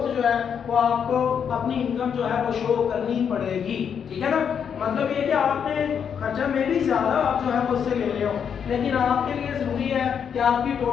جو ہے وہ آپ کو اپنی انکم جو ہے وہ شو کرنی پڑے گی، ٹھیک ہے نا؟ مطلب یہ کہ آپ نے خرچہ میں بھی زیادہ آپ جو ہے وہ اس سے لے رہے ہو، لیکن آپ کے لیے ضروری ہے کہ آپ کی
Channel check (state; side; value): quieter; right; 7.6 dB